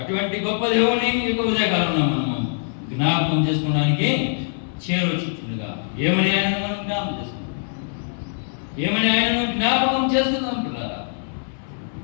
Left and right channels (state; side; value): silent; right; digital silence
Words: అటువంటి గొప్ప దేవుని యొక్క ఉదయకాలంలో మనము జ్ఞాపకం చేసుకోవడానికి చేరవచ్చుగా ఏమని ఆయనను మనం జ్ఞాపకం చేసుకుంటాం. ఏమని ఆయనను జ్ఞాపకం చేసుకుందాం పిల్లారా.